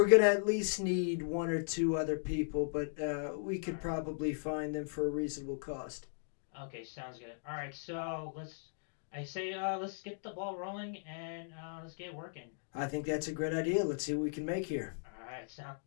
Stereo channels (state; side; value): silent; right; digital silence